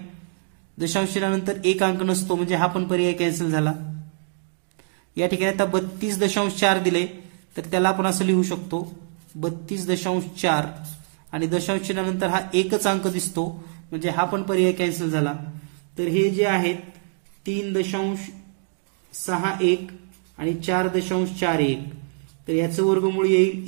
दशांश चिन्हानंतर 1 अंक नसतो म्हणजे हा पण पर्याय कॅन्सल झाला. या ठिकाणी आता 32.4 दिले तर त्याला आपण असं लिहू शकतो 32.4 आणि दशांश चिन्हानंतर हा एकच अंक दिसतो म्हणजे हा पण पर्याय कॅन्सल झाला. तर हे जे आहेत 3.61 आणि 4.41 तर याचं वर्गमूळ येईल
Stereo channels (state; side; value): silent; left; 62 dB below the other